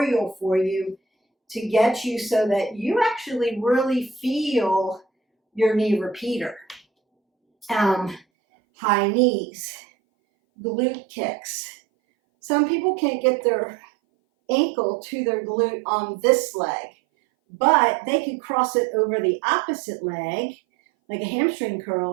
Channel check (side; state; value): left; drops out; at 8.2 s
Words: for you to get you so that you actually really feel your knee repeater. High knees, glute kicks. Some people can't get their ankle to their glute on this leg, but they could cross it over the opposite leg, like a hamstring